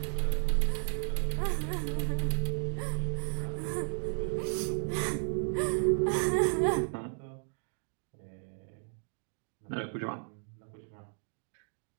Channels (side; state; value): left; silent; 55 dB below the other